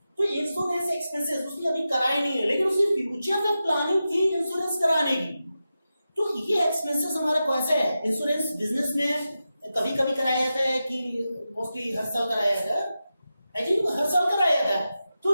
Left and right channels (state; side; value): inverted; both; correlation -0.91